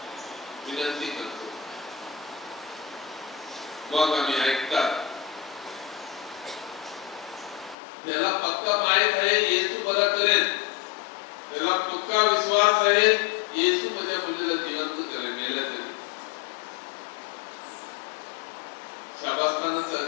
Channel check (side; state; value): right; drops out; at 7.8 s